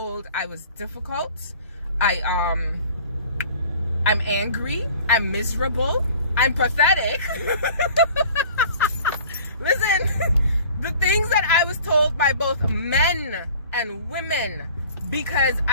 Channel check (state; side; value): inverted; both; correlation -0.47